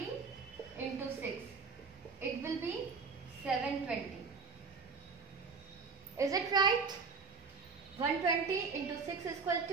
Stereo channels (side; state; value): left; quieter; 4.9 dB